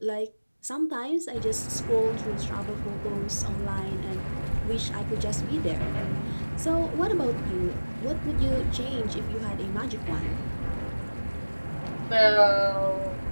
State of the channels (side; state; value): both; inverted; correlation -1.00